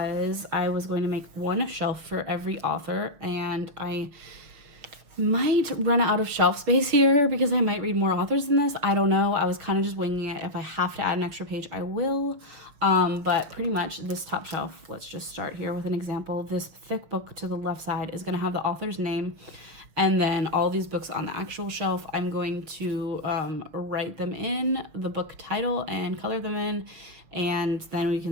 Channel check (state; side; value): late; left; 6.5 ms